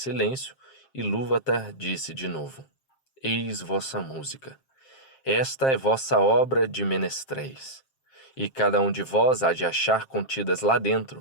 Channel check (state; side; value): late; right; 7.5 ms